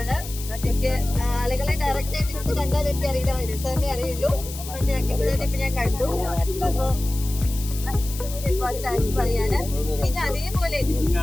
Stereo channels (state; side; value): noise; left; hiss, 12 dB below the sound